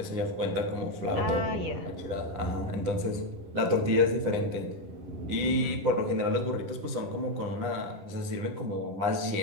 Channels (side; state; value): left; late; 9.9 ms